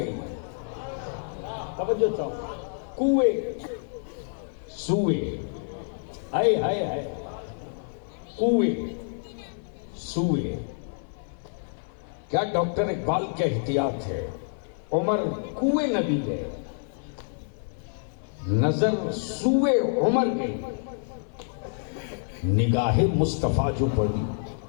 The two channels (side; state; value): right; silent; 57 dB below the other